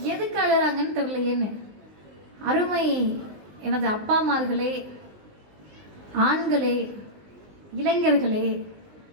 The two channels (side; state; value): left; late; 20 ms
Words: எதுக்கு அழுறாங்கன்னு தெரியலையேன்னு. அருமை எனது அப்பாமார்களே, ஆண்களே, இளைஞர்களே,